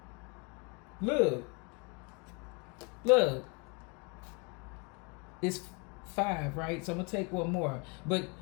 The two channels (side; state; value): right; quieter; 32.5 dB